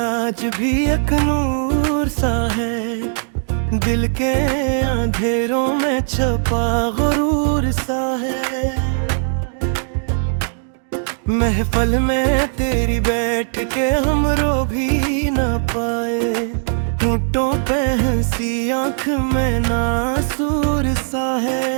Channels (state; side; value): silent; left; digital silence